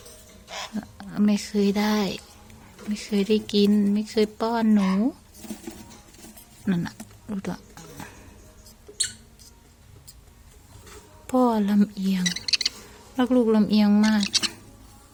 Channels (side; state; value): both; identical; correlation 1.00